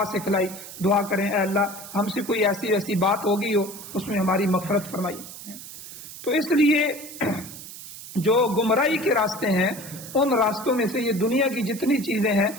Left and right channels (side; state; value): right; noise; hiss, 13 dB below the sound